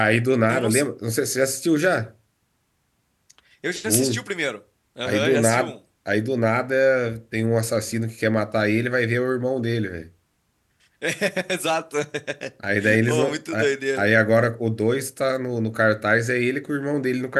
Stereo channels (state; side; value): identical; both; correlation 1.00